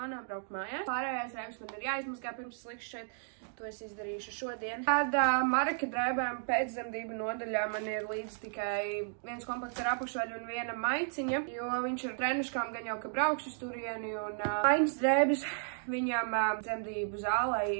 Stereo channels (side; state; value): left; silent; digital silence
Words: braukt mājās. Pārējās drēbes man ir jāizmazgā pirms es likšu šeit. To es izdarīšu šodien. Tad Maraka drēbēm pēcdzemdību nodaļā man ir līdz tikai viens komplekts ar apakšvaļu un viena maiciņa, jo viņš ir trenuškām gan jau, ka braukšu uz turieni, un maiņas drēbes viņam dzemdību zālē